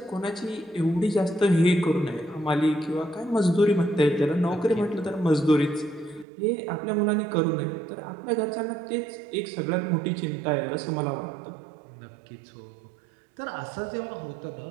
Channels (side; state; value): left; drops out; at 6.2 s